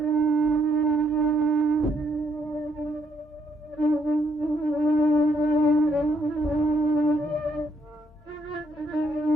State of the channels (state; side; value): normal; both; correlation 0.72